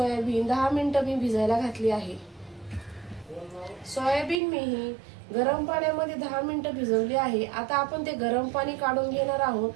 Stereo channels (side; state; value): left; drops out; at 4.4 s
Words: 10 मिनिटं मी भिजायला घातली आहे। सोयाबीन मी ही गरम पाण्यामध्ये 10 मिनिटं भिजवली आहे। आता आपण ते गरम पाणी काढून घेणार आहोत